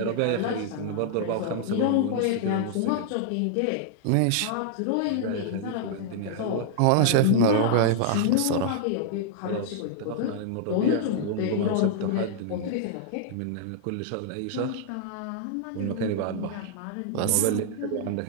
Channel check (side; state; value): both; different; correlation -0.01